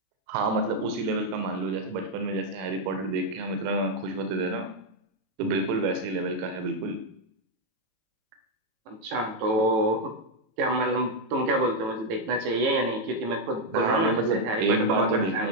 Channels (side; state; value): left; late; 18 ms